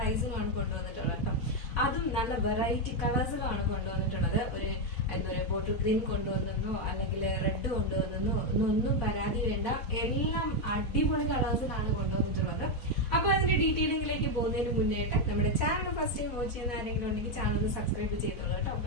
കൊണ്ടുവന്നിട്ടുള്ളത് കേട്ടോ. അതും നല്ല വെറൈറ്റി കളേഴ്സിലുമാണ് കൊണ്ടുവന്നിട്ടുള്ളത്. ഒരു എന്താ പറയുക, ബോട്ടിൽ ഗ്രീൻ കൊണ്ടുവന്നോ അല്ലെങ്കിൽ റെഡ് കൊണ്ടുവന്നോ ഒന്നും പരാതി വേണ്ട. എല്ലാം അടിപൊളി കളേഴ്സിലാണ് കൊണ്ടുവന്നിട്ടുള്ളത്. അപ്പൊ അതിന്റെ ഡീറ്റെയിലിംഗിലേക്ക് പോകുന്നതിന് മുന്നേട്ട് നമ്മുടെ ചാനൽ ഫസ്റ്റ് ടൈം വാച്ച് ചെയ്യുന്ന ആരെങ്കിലും ഉണ്ടെങ്കിൽ ചാനൽ സബ്സ്ക്രൈബ് ചെയ്തോളൂ കേട്ടോ.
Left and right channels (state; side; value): late; right; 4.1 ms